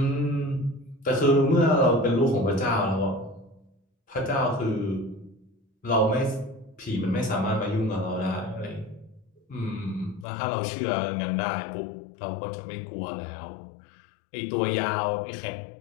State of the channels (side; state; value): right; drops out; at 10.2 s